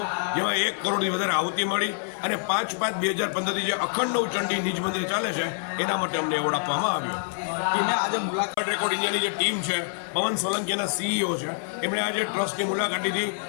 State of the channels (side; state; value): right; silent; 59 dB below the other